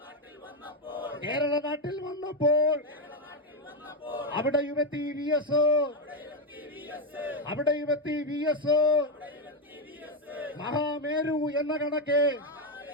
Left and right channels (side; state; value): both; normal; correlation 0.07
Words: കേരള നാട്ടിൽ വന്നപ്പോൾ അവിടെയുമെത്തി VS, അവിടെയുമെത്തി VS. മഹാമേരു എന്ന കണക്കെ,